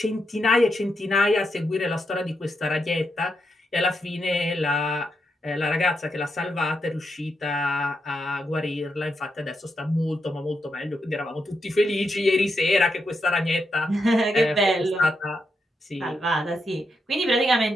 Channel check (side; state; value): both; normal; correlation 0.83